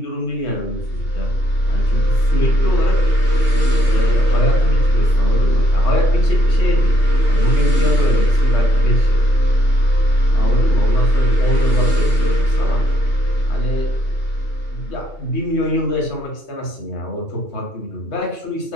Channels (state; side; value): late; right; 2.8 ms